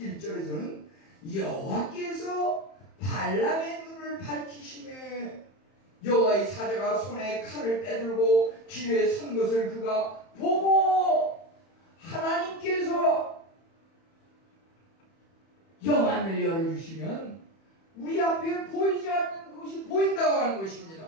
여호와께서 발람의 눈을 밝히시매 여호와의 사자가 손에 칼을 빼들고 길에 선 것을 그가 보고 하나님께서 영안을 열어주시면 우리 앞에 보이지 않는 것이 보인다고 하는 것입니다.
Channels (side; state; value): right; late; 31 ms